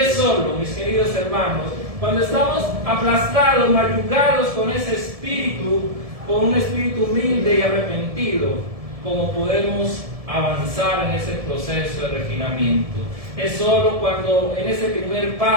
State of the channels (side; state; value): left; late; 1.7 ms